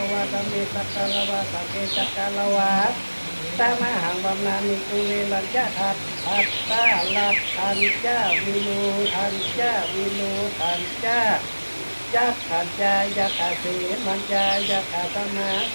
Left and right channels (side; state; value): both; inverted; correlation -1.00